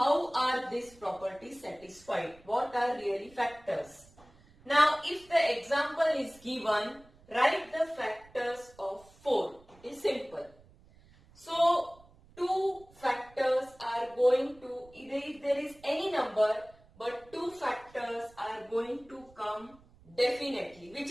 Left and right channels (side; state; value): right; noise; rumble, 26 dB below the sound